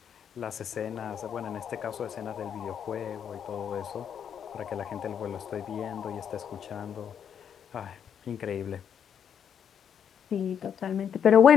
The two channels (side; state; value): right; quieter; 8.2 dB